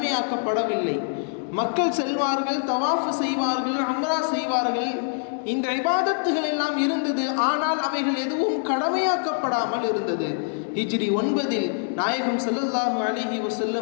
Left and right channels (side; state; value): right; silent; digital silence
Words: மக்கள் செல்வார்கள், தவாஃப் செய்வார்கள், உம்ரா செய்வார்கள், இந்த இபாதத்துகள் எல்லாம் இருந்தது. ஆனால் அவைகள் எதுவும் கடமையாக்கப்படாமல் இருந்தது. ஹிஜ்ரி 9 நாயகம் ஸல்லல்லாஹு அலைஹி